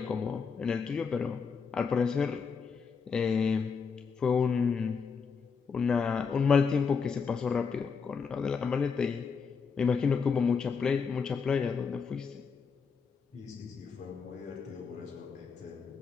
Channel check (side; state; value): right; quieter; 5.7 dB